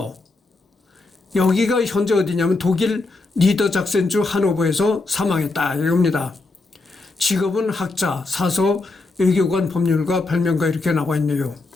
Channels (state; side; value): quieter; right; 3.4 dB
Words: 여기가 현재 어디냐면 독일 니더작센주 하노버에서 사망했다 이겁니다. 직업은 학자, 사서, 외교관, 법률가, 발명가 이렇게 나와 있네요.